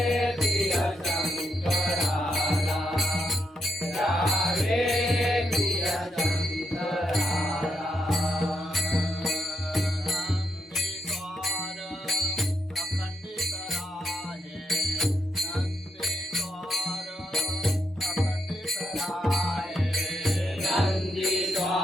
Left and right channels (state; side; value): normal; both; correlation 0.82